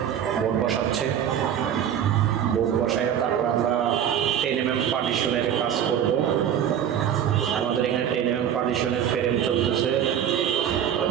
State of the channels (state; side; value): quieter; left; 9.5 dB